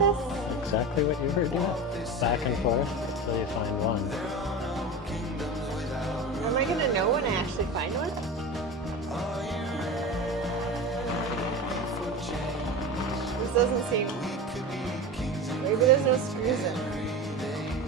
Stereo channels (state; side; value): normal; both; correlation 0.27